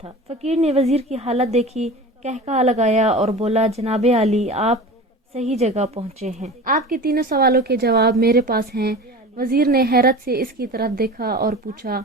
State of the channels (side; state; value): both; normal; correlation 0.35